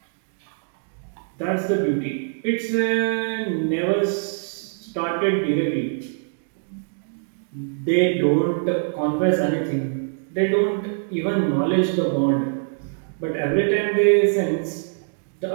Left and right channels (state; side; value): silent; left; digital silence